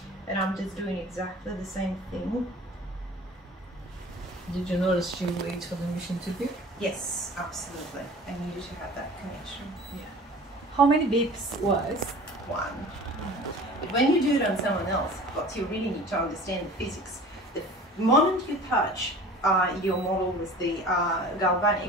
And I'm just doing exactly the same thing. Did you notice she waits for the machine to beep? Yes, absolutely. I needed to have that connection. Yeah. How many beeps was? 1. But when you do it on someone else, what you really need to understand the physics. The moment you touch your model with the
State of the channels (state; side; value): normal; both; correlation 0.43